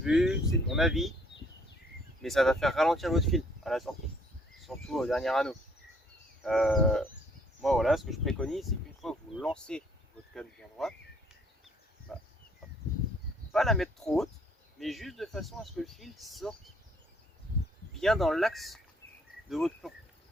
c'est mon avis, mais ça va faire ralentir votre fil à la sortie, surtout au dernier anneau. Moi, voilà, ce que je préconise, c'est qu'une fois que vous lancez votre canne bien droite, bah, pas la mettre trop haute, mais juste de façon à ce que le fil sorte bien dans l'axe de votre plomb,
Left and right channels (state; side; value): normal; both; correlation 0.63